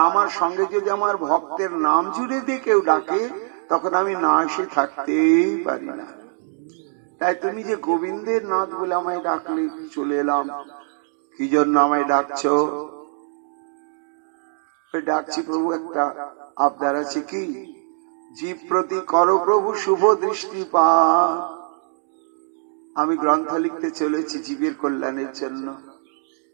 আমার সঙ্গে যদি আমার ভক্তের নাম জুড়ে দিয়ে কেউ ডাকে তখন আমি না এসে থাকতেই পারি না। তাই তুমি যে গোবিন্দের নাথ বলে আমায় ডাকলে, চলে এলাম। কি জন্য আমায় ডাকছো? ডাকছি প্রভু, একটা আবদার আছে। কি? জীব প্রতি করো প্রভু শুভ দৃষ্টিপাত। আমি গ্রন্থ লিখতে চলেছি জীবের কল্যাণের জন্য।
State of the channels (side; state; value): left; silent; 58 dB below the other